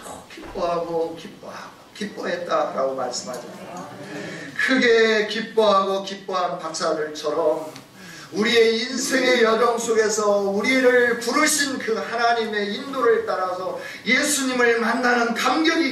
기뻐했다라고 말씀하잖아요. 크게 기뻐하고 기뻐한 박사들처럼 우리의 인생의 여정 속에서 우리를 부르신 그 하나님의 인도를 따라서 예수님을 만나는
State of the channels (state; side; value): identical; both; correlation 1.00